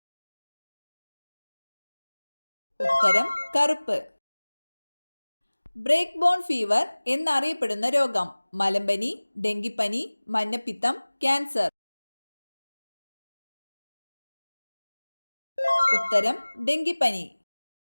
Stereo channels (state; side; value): inverted; both; correlation -1.00